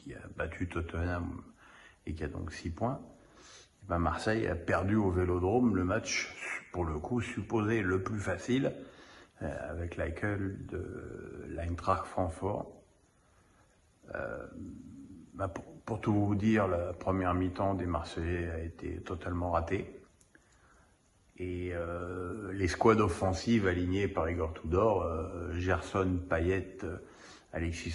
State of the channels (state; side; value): identical; both; correlation 1.00